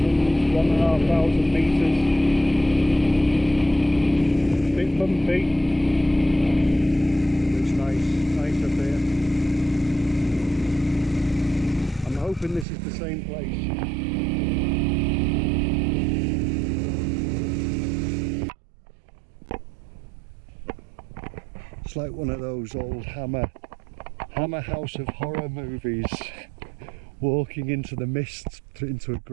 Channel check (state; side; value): drops out; left; at 12.7 s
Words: metres. Bit bumpy. Looks nice up here. I'm hoping this is the same place. It's like one of those old Hammer House of Horror movies, walking into the mist into a